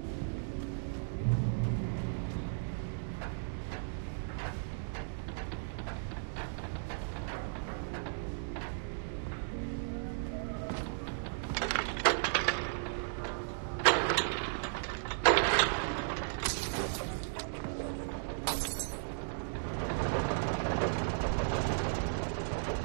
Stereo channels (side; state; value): left; silent; digital silence